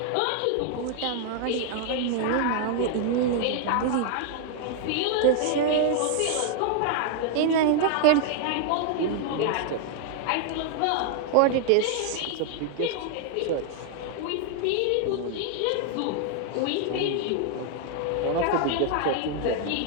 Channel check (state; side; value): different; both; correlation 0.00